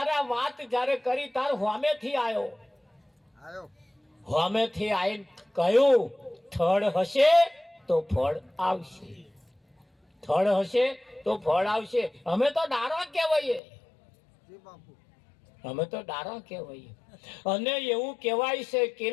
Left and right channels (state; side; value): drops out; right; at 13.6 s